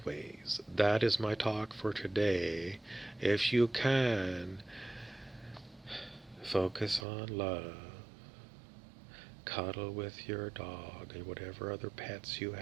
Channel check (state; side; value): drops out; left; at 7.1 s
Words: that is my talk for today. If you can, Focus on love. Cuddle with your dog and whatever other pets you